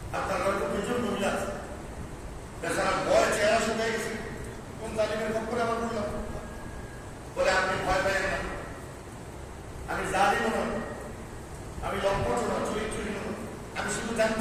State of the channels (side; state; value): both; identical; correlation 1.00